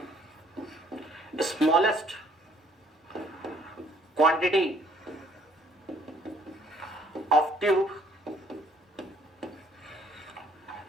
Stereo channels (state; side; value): normal; both; correlation 0.62